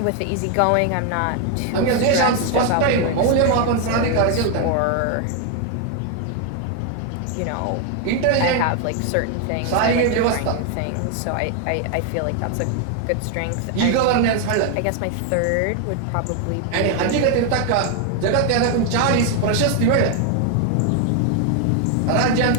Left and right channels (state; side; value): different; both; correlation 0.01